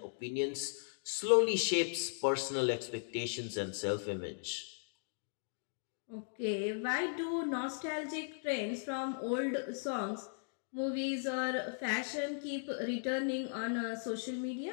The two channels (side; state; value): right; silent; digital silence